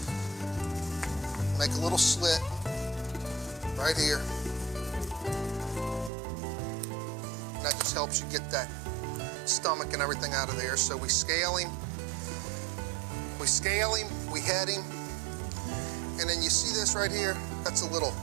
make a little slit right here. That just helps you get that stomach and everything out of there. So we scale him, we head him, and then you see this right here? That's a little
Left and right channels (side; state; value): left; drops out; at 6.1 s